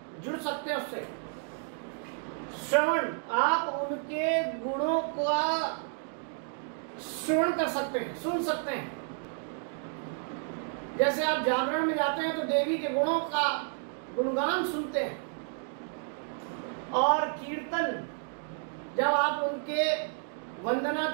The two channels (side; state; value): left; silent; 55 dB below the other